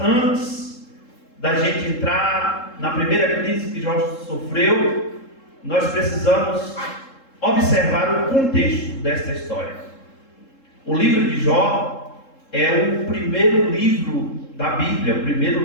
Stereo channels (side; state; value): right; late; 3.7 ms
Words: da gente entrar na primeira crise que Jó sofreu, nós precisamos observar o contexto desta história. O livro de Jó é o primeiro livro da Bíblia, o